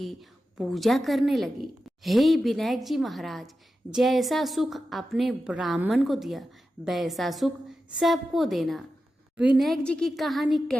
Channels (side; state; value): both; normal; correlation 0.91